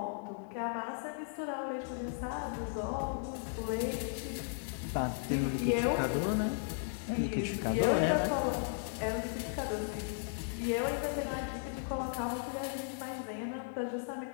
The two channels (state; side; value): silent; right; digital silence